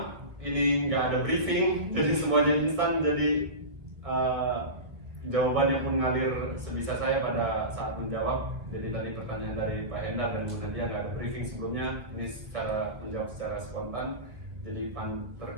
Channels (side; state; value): left; late; 1.3 ms